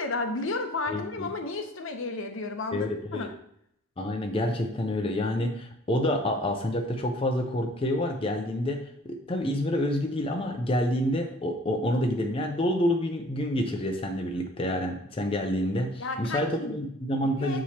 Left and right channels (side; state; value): both; normal; correlation 0.53